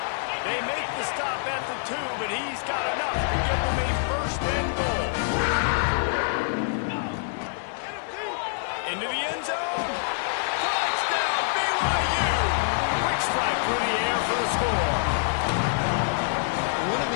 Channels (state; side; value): silent; right; digital silence